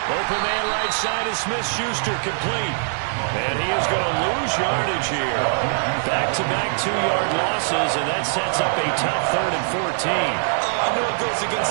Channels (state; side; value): silent; left; digital silence